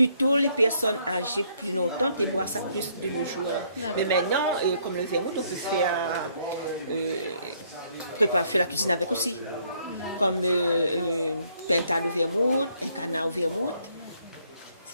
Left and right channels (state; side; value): inverted; both; correlation -0.68